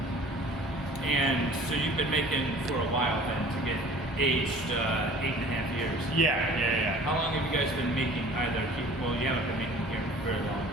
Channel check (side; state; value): both; normal; correlation 0.47